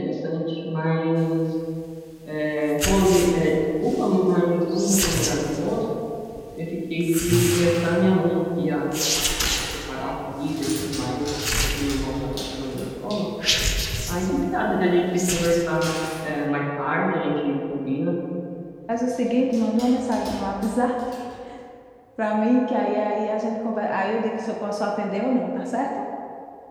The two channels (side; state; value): both; identical; correlation 1.00